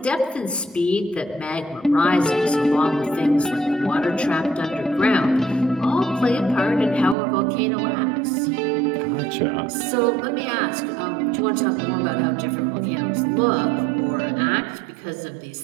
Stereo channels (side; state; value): left; drops out; at 7.2 s